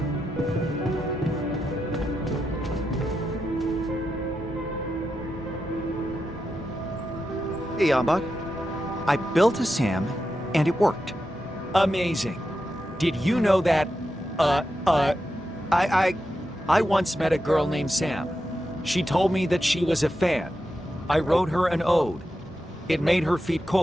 Hey, Yambot. I built a SAM, and it worked. Amazing. Did you know that, I once met a girl named Sam. She told me that she was a fan. I wrote her an ode. It made her feet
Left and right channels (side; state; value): both; normal; correlation 0.88